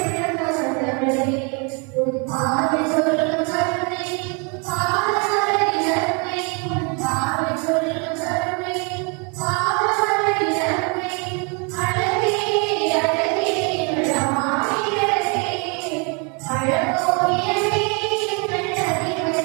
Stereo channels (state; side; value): quieter; left; 34.2 dB